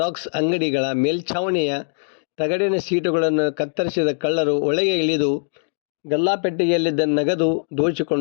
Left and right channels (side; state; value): right; silent; 58 dB below the other